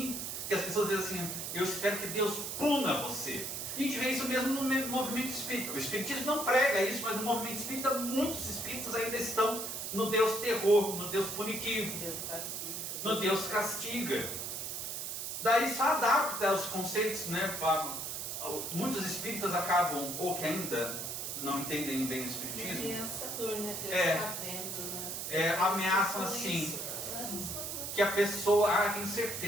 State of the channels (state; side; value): noise; right; hiss, 5 dB below the sound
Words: que as pessoas dizem assim: eu espero que Deus puna você. E a gente vê isso mesmo no movimento espírita. O espiritismo não prega isso, mas no movimento espírita muitos espíritos ainda estão no Deus terror, no Deus punitivo, no Deus castiga. Daí só adapta os conceitos, né? Muitos espíritas acabam, ou que ainda não entendem bem o espiritismo, Ameaçador, né? Deus está vendo, né? Ameaçam assim, que a pessoa, tenho